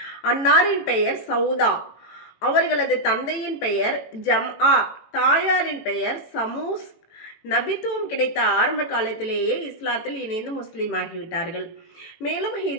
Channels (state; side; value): late; right; 18 ms